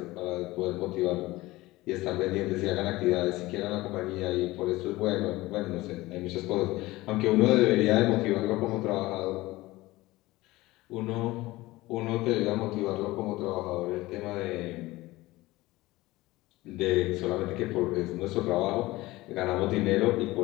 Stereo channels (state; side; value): quieter; right; 19.1 dB